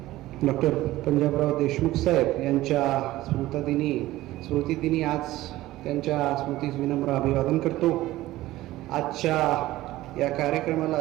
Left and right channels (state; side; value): quieter; left; 16.5 dB